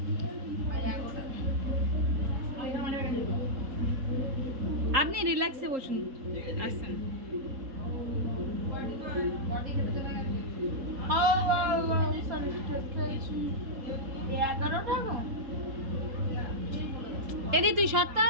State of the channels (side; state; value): left; late; 3.8 ms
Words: আপনি রিল্যাক্সে বসুন, আসছেন। এদি তুই সত্য